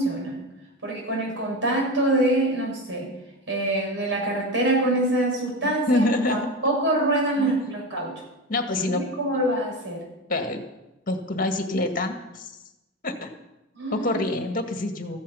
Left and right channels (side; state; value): both; normal; correlation 0.22